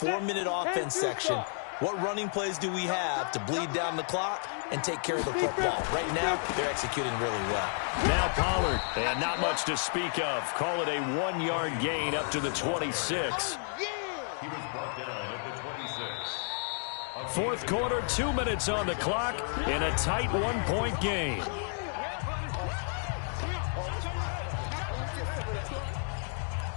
offense section. What running plays do we have to bleed down the clock and take care of the football? Right now, they're executing really well. Now Pollard, and not much to speak of. Call it a 1-yard gain up to the 26. He was brought down at the 26. Fourth quarter, 2 minutes on the clock in a tight 1-point game.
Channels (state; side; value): silent; right; 57 dB below the other